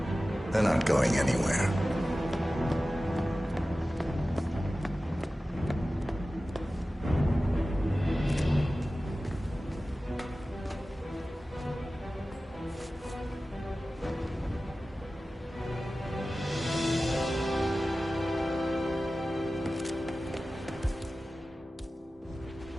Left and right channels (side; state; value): both; normal; correlation 0.96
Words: They're not going anywhere.